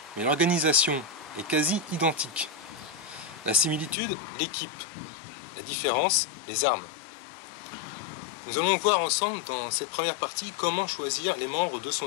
mais l'organisation est quasi identique. La similitude, l'équipe. La différence, les armes. Nous allons voir ensemble dans cette première partie comment choisir les membres de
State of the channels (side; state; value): right; drops out; at 4.0 s